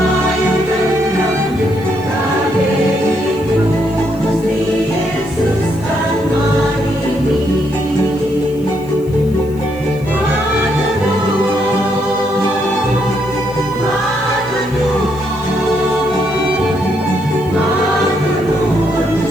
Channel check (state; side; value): noise; left; hiss, 25 dB below the sound